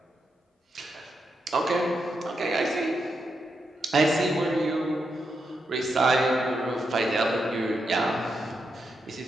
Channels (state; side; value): normal; both; correlation 0.84